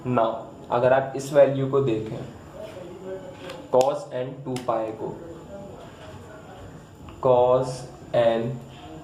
Now अगर आप इस value को देखें cos n 2 पाई को, cos n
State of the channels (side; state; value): both; identical; correlation 1.00